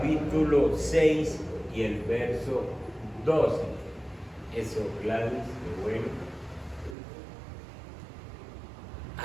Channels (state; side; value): drops out; left; at 7.0 s